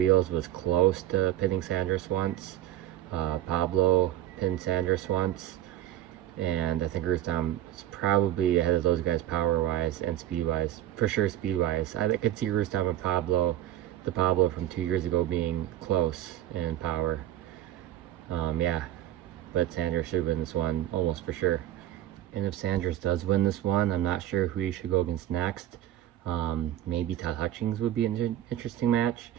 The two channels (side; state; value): left; quieter; 13.0 dB